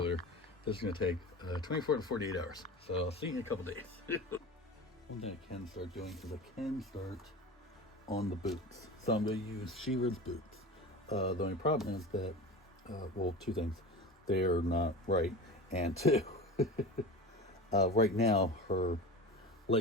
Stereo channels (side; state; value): both; normal; correlation 0.32